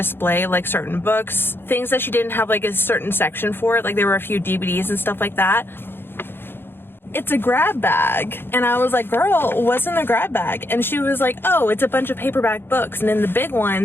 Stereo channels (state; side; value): late; right; 0.10 ms